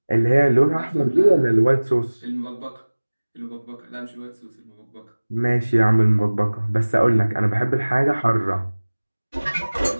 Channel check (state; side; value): inverted; both; correlation -1.00